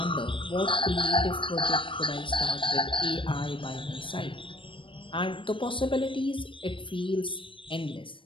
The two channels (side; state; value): right; late; 0.25 ms